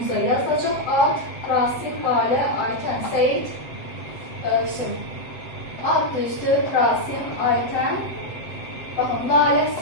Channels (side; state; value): right; late; 8.1 ms